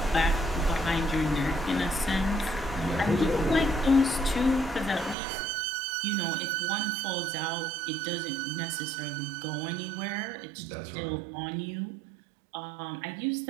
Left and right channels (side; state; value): left; drops out; at 5.2 s